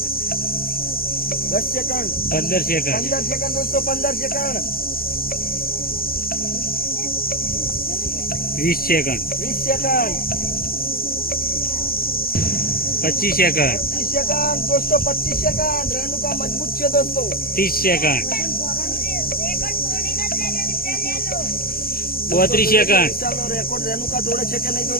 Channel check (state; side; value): late; right; 0.43 ms